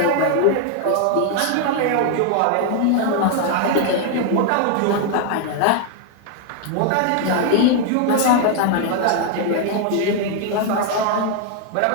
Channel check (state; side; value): different; both; correlation 0.00